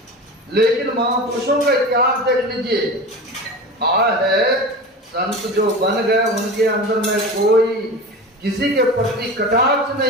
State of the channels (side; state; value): both; normal; correlation 0.31